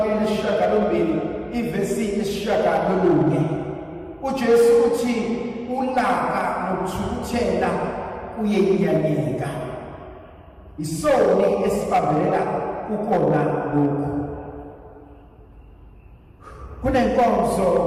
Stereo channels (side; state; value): both; identical; correlation 1.00